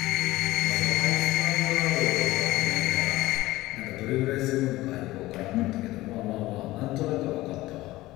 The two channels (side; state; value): right; quieter; 18.0 dB